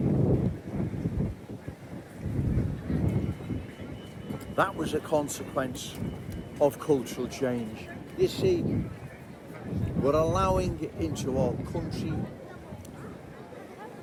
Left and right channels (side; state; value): both; identical; correlation 1.00